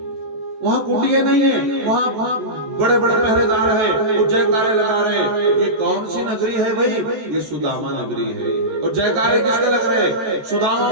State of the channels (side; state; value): left; late; 14 ms